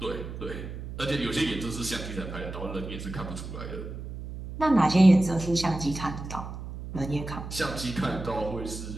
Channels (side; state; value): right; noise; hum, 9 dB below the sound